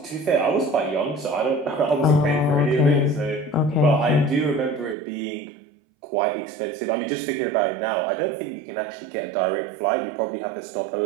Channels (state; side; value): drops out; left; at 5.0 s